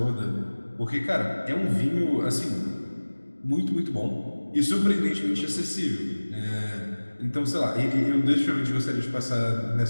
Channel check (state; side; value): inverted; both; correlation -1.00